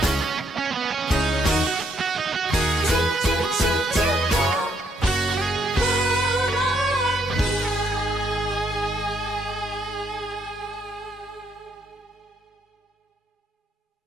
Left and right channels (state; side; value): normal; both; correlation 0.73